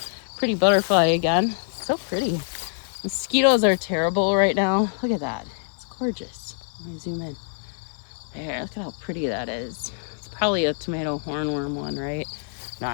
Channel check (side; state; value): right; silent; 62 dB below the other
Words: pretty butterfly again. It's so pretty. Mosquitoes are terrible right now. Look at that. It's gorgeous. Let me zoom in. There, look at how pretty that is. It's probably a tomato hornworm one, right? No,